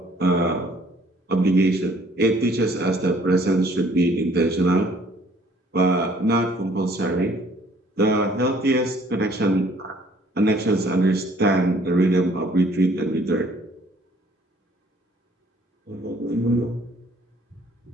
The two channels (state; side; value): normal; both; correlation 0.59